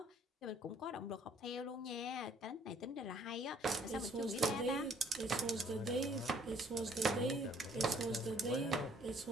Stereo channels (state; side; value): normal; both; correlation 0.61